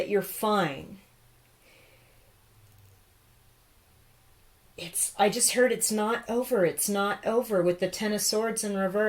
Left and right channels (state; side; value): identical; both; correlation 1.00